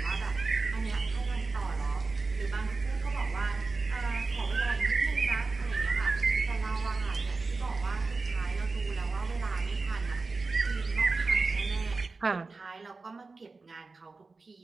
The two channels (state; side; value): quieter; left; 3.9 dB